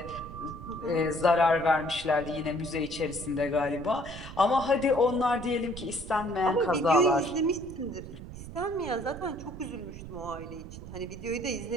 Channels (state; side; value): noise; right; rumble, 12 dB below the sound